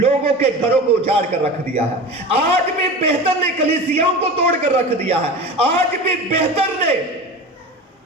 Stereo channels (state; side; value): normal; both; correlation 0.31